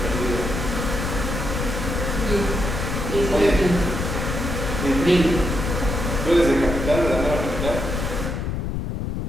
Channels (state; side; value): noise; left; rumble, 3 dB below the sound